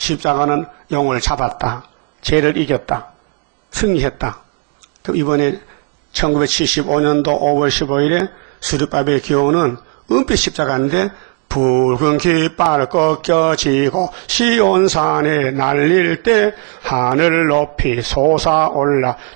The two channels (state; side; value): quieter; left; 35.1 dB